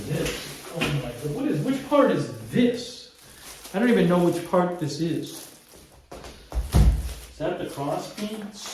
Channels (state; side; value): identical; both; correlation 1.00